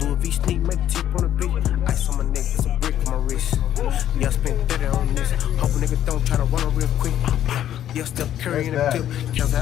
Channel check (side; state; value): right; quieter; 11.2 dB